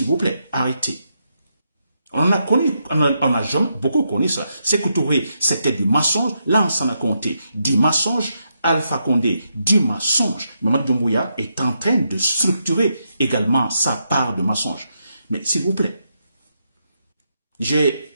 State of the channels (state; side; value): inverted; both; correlation -0.82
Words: vous plaît, arrêtez. On a beaucoup connu ça. C'est que Touré, c'était du mensonge. Là, on s'en a compté. Du mensonge. Alpha Condé, du mensonge. Mamadi Doumbouya est en train de structurer également sa part de mensonge. Mais s'il vous plaît,